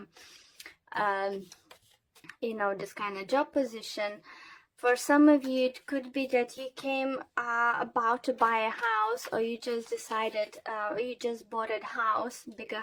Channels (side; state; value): both; identical; correlation 1.00